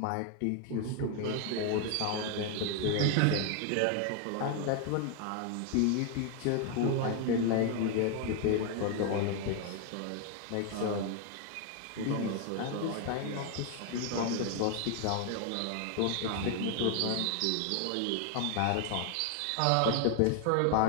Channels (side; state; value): both; different; correlation 0.00